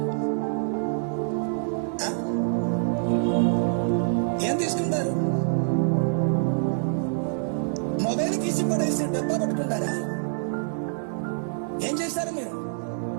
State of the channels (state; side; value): silent; left; digital silence